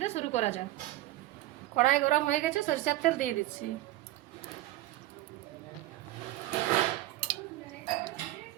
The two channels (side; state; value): left; quieter; 16.1 dB